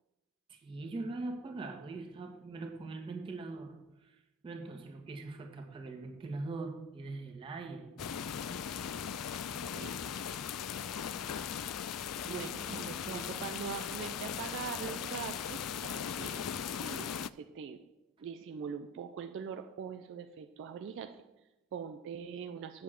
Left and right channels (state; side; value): normal; both; correlation 0.31